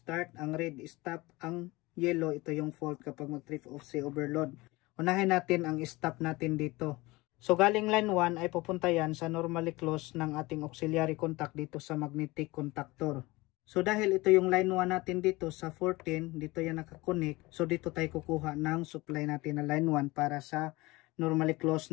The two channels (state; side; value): quieter; right; 21.7 dB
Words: ang red stop, ang yellow ito yung fault kapag mag-trip off si overload. Unahin natin ang stop natin dito. So galing line 1 ay pupunta yan sa normally closed ng ating auxiliary contact dito sa magnetic contactor. So dahil ito yung line 1 natin dito sa 14, dito yan nakakonect. So dito tayo kukuha ng supply natin na line 1 para sa normally